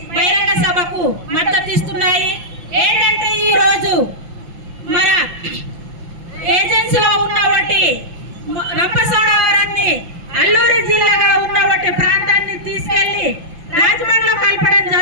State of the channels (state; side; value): late; left; 5.8 ms